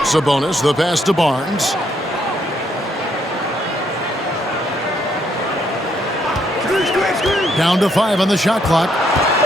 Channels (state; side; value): normal; both; correlation 0.72